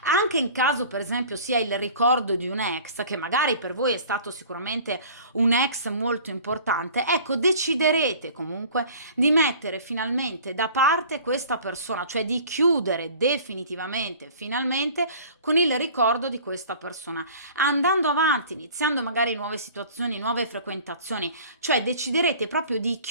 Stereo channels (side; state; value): both; inverted; correlation -0.46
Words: Anche in caso, per esempio, sia il ricordo di un ex, che magari per voi è stato sicuramente un ex molto importante, ecco, deciderete comunque di mettere finalmente da parte questa persona, cioè di chiudere definitivamente, finalmente, con il ricordo di questa persona, andando avanti, iniziando magari nuove situazioni, nuove frequentazioni, cioè deciderete proprio di